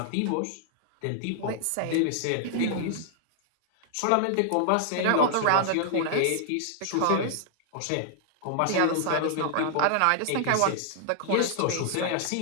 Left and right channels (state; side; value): different; both; correlation 0.00